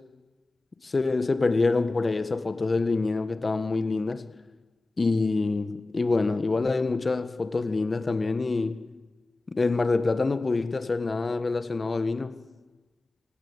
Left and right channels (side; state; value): right; quieter; 3.2 dB